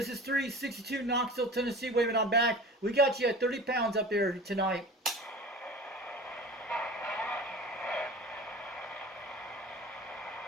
is 362 Knoxville, Tennessee, waving on back. We got you at 30 pounds up there tonight.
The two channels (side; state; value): both; normal; correlation 0.38